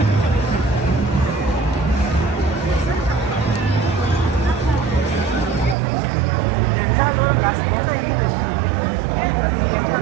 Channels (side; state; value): left; drops out; at 5.8 s